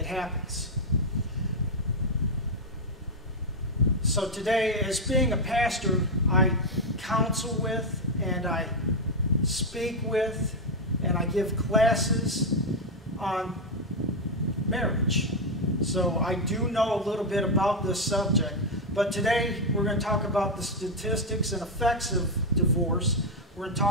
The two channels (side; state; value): both; normal; correlation 0.03